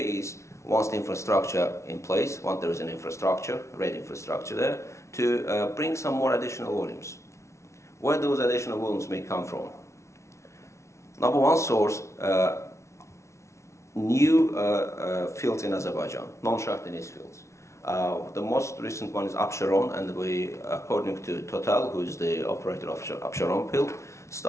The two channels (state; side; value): late; right; 0.13 ms